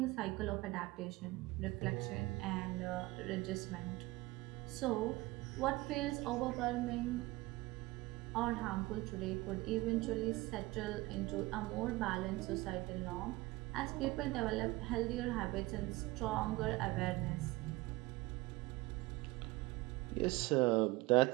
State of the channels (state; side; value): quieter; left; 20.8 dB